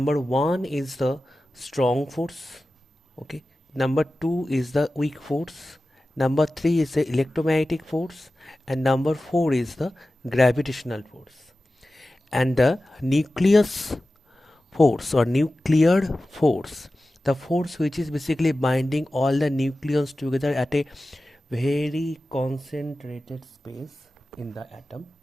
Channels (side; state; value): both; normal; correlation 0.95